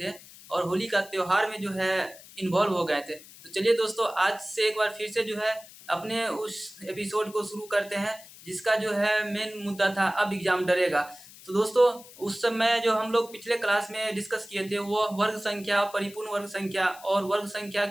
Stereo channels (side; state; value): left; noise; hiss, 19 dB below the sound